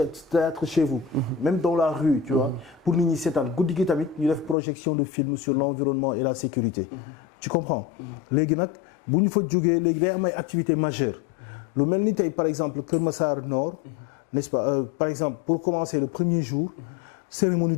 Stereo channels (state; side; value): drops out; right; at 4.5 s